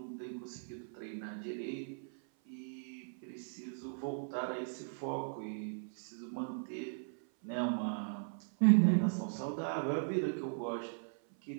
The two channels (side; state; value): left; silent; 52 dB below the other